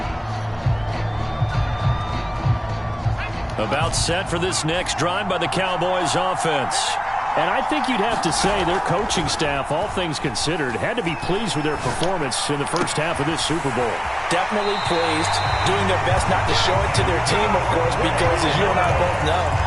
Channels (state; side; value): identical; both; correlation 1.00